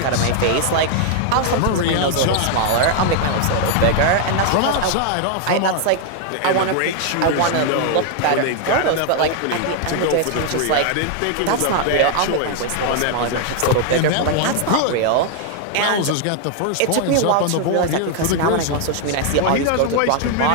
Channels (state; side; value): different; both; correlation 0.00